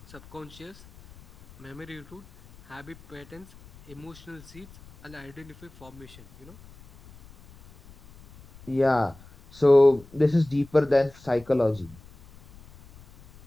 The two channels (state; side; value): noise; left; rumble, 22 dB below the sound